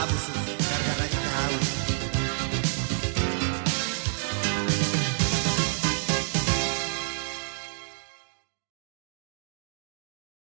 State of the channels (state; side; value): silent; left; digital silence